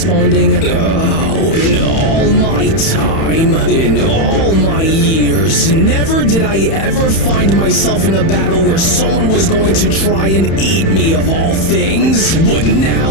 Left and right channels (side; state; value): right; late; 31 ms